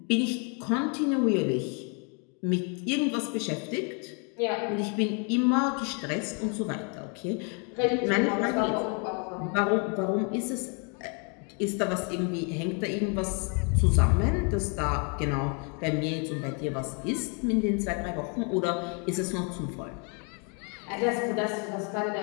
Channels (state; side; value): quieter; right; 37.1 dB